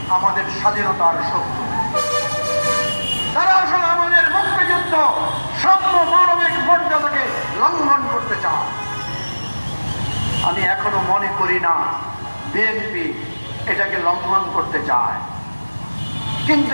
আমাদের স্বাধীনতার শত্রু। তারা আসলে আমাদের মুক্তিযুদ্ধ সাম্য মানবিক মর্যাদাকে লঙ্ঘন করতে চায়। আমি এখনো মনে করি না বিএনপি এটাকে লঙ্ঘন করতে চায়, কিন্তু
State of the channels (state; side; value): inverted; both; correlation -1.00